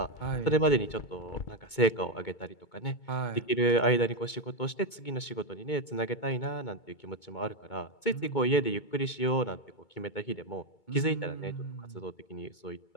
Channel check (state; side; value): late; right; 2.2 ms